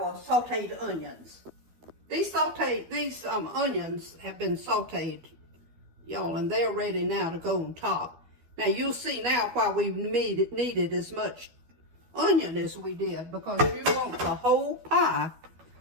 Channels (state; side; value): late; left; 12 ms